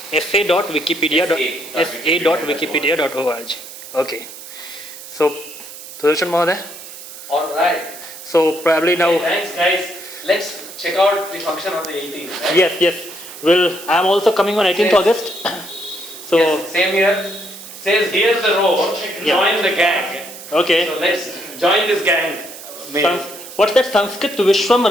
sa.wikipedia.org. Okay. So, Sudarshan Mahoday. All right. So probably now. Hey, thanks, guys. Let's check out the function on the 18th. Right? Yes. Well, I'm also coming on 18th Yes. August. So Yes, same here. Says here's the road. Join the gang. okay. So let's join this gang. What's that Sanskrit Vishwam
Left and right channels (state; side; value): noise; right; hiss, 14 dB below the sound